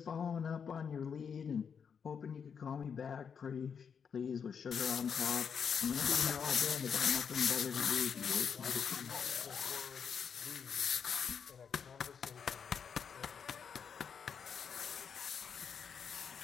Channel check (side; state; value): right; quieter; 6.8 dB